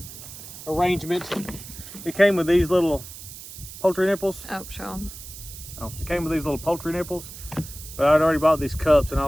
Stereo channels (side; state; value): right; noise; hiss, 14 dB below the sound